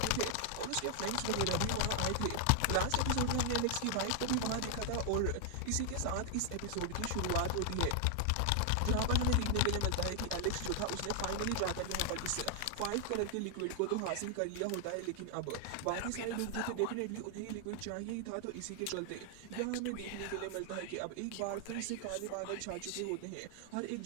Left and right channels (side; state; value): both; different; correlation 0.00